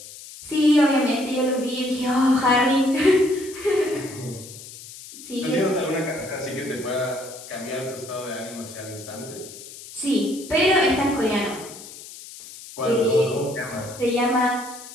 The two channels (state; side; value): noise; left; hiss, 15 dB below the sound